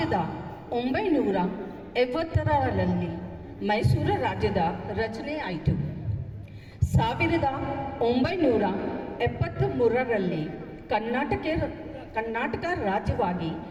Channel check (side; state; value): both; identical; correlation 1.00